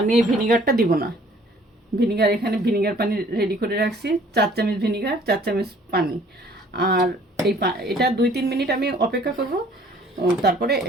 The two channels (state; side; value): normal; both; correlation 0.56